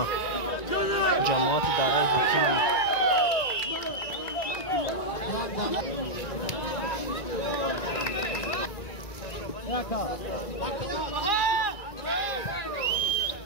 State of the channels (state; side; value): late; right; 1.9 ms